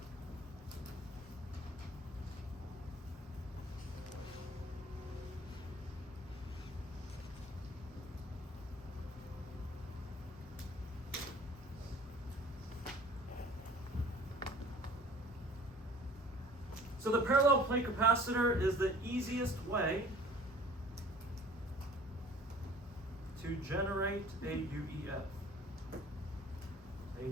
So the parallel plate capacitor is the easiest way to generate a UEF,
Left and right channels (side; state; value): both; normal; correlation 0.48